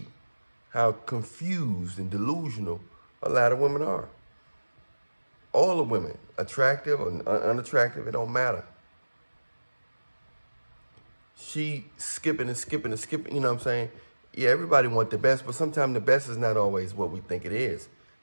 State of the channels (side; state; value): both; inverted; correlation -1.00